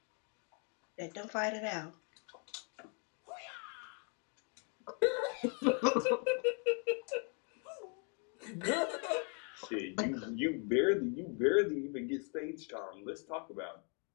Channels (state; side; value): quieter; right; 39.3 dB